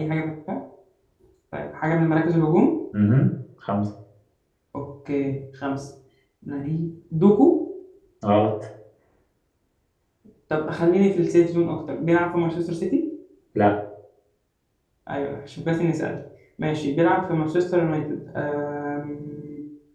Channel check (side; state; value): both; identical; correlation 1.00